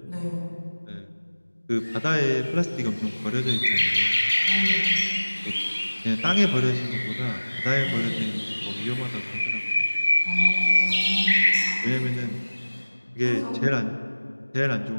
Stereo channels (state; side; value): inverted; both; correlation -1.00